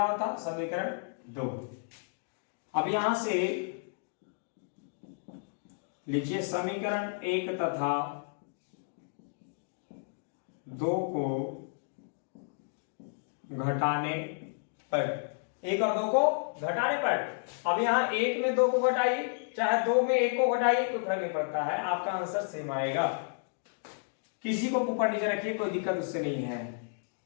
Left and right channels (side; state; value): right; silent; digital silence